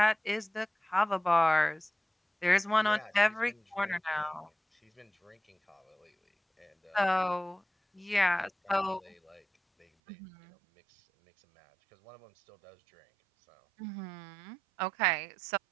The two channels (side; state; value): left; drops out; at 9.9 s